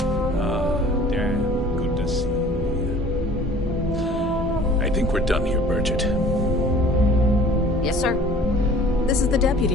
Damn good to see you. I think we're done here, Bridget. Yes, sir. This is the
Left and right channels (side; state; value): both; normal; correlation 0.49